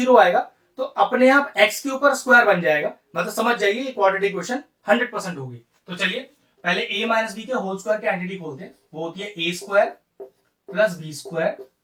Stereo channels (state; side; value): identical; both; correlation 1.00